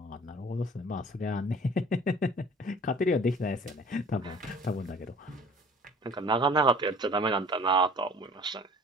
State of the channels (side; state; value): both; normal; correlation 0.49